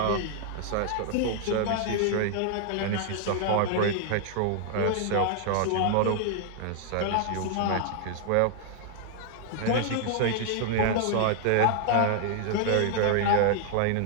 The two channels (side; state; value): both; different; correlation 0.00